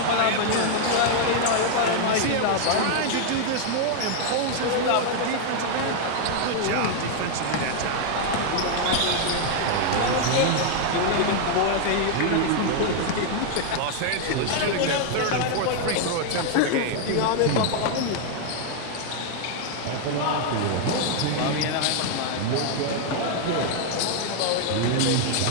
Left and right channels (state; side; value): different; both; correlation 0.00